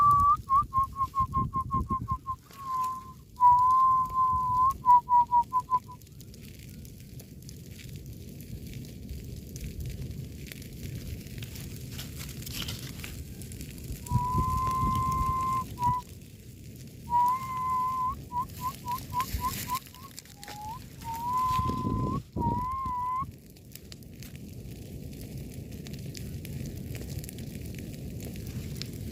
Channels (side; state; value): both; identical; correlation 1.00